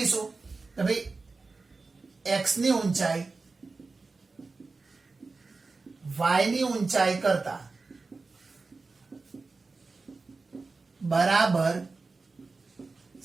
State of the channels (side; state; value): left; quieter; 3.9 dB